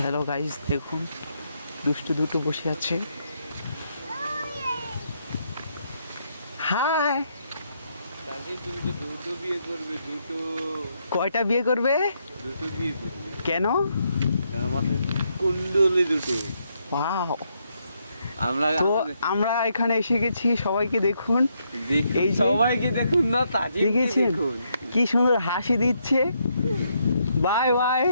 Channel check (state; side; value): inverted; both; correlation -0.77